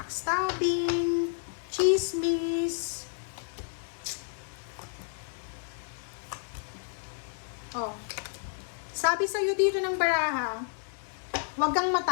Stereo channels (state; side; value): silent; right; digital silence